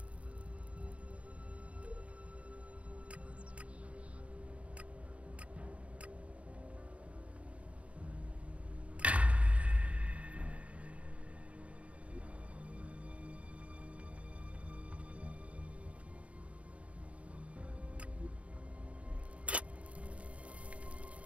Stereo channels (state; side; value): late; left; 0.064 ms